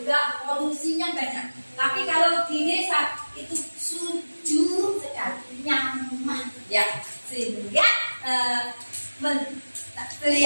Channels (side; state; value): both; inverted; correlation -1.00